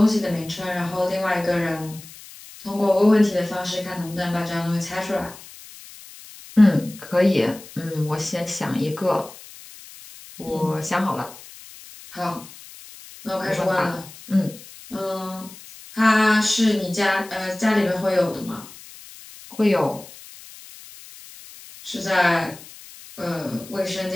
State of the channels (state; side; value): noise; left; hiss, 18 dB below the sound